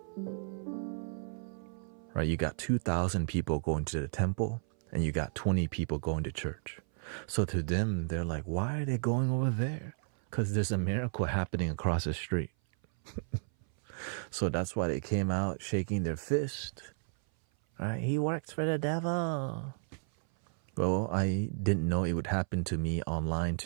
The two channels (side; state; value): left; silent; 56 dB below the other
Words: Right? You got 2,000 people going to the temple, and you got 20 people going to church. So to them, they're like, why are they going over there? Because there's a miracle happening across the street. So that's why they came out shaking their fist. Right? He works for the devil. Well, I didn't know it would happen to me online